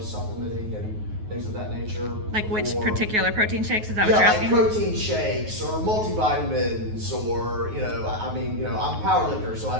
supplementing and things of that nature. Like which or- particular protein shakes? Is that what Yeah, you're like asking? protein shakes or multivitamins or, I mean, I'm a power lifter, so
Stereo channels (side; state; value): left; late; 9.4 ms